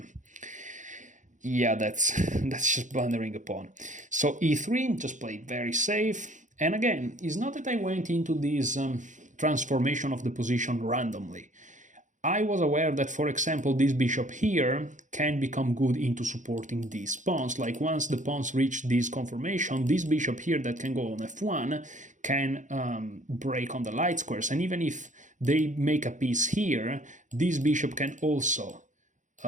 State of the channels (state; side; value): late; left; 0.36 ms